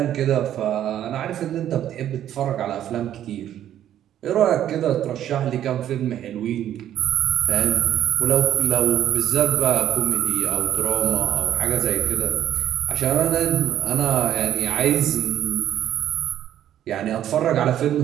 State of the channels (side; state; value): left; quieter; 11.2 dB